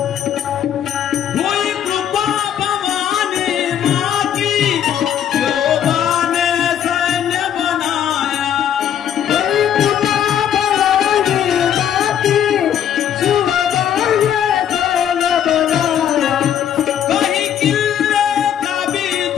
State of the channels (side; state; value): right; quieter; 9.7 dB